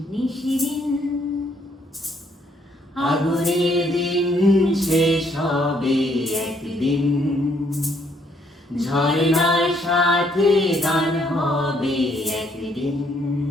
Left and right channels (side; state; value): both; normal; correlation 0.69